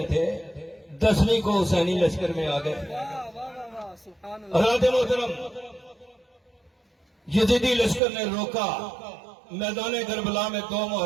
تھے. 10ویں کو حسینی لشکر میں آ گئے. حضرت محترم یزیدی لشکر نے روکا میدان کربلا میں 2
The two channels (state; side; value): drops out; left; at 8.0 s